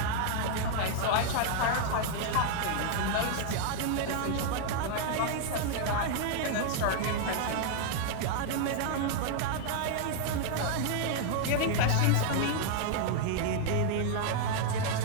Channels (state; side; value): different; both; correlation 0.00